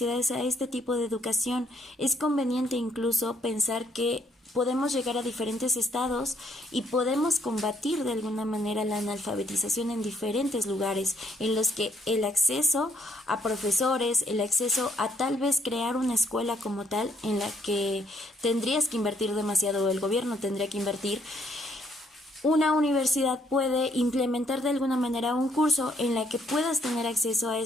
a este tipo de educación. Es conveniente incluso pensar que podemos llegar a diferentes estados y podemos combatir de alguna manera la analfabetización en diferentes lugares en los que el acceso a profesores, el acceso a tal vez crear una escuela como tal en la que tendrías que invertir demasiado o el gobierno tendría que invertir. Una universidad puede implementar de alguna manera un curso en la que puedas tener acceso a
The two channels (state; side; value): normal; both; correlation 0.69